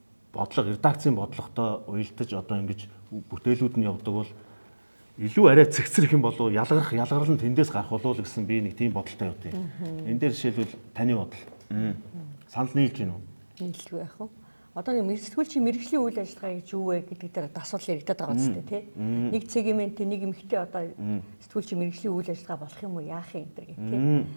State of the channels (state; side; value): inverted; both; correlation -1.00